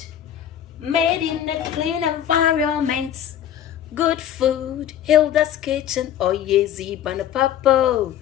made in a clean environment. Good food, Hilda's kitchen. Oh yeah, Zebana Papa.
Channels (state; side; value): quieter; right; 10.3 dB